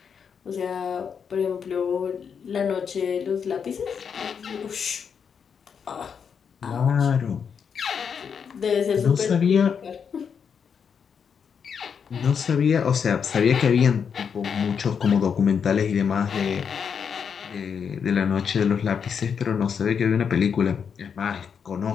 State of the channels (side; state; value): right; quieter; 6.8 dB